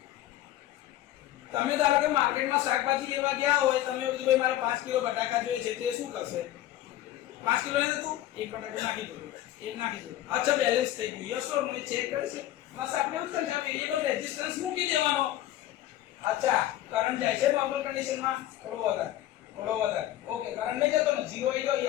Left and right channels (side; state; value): right; quieter; 13.7 dB